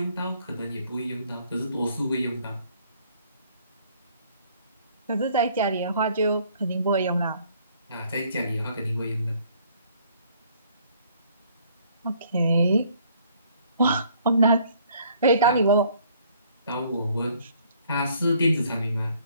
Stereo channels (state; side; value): inverted; both; correlation -0.61